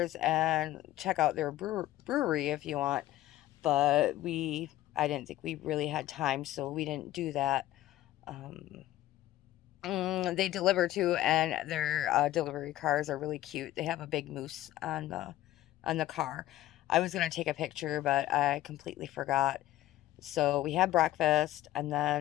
and check out their brewery if you want. But I didn't think we really had time, so we didn't do that. They deliver too, and their delivery cars are really cute. They have a big moose on the car. I was gonna take a picture, but I completely forgot. So we had breakfast, and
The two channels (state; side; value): quieter; right; 14.8 dB